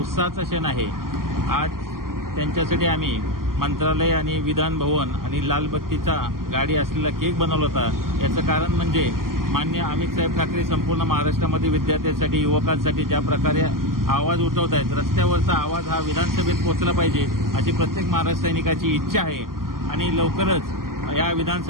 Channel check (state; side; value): late; left; 0.91 ms